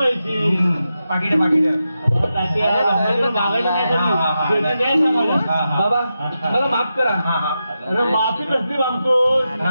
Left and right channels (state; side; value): inverted; both; correlation -0.89